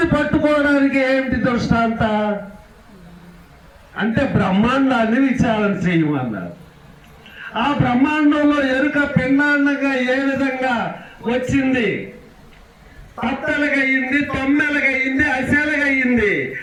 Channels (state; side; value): identical; both; correlation 1.00